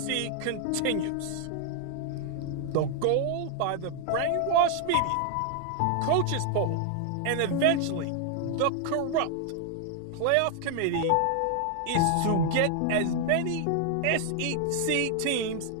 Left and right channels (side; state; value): both; different; correlation 0.00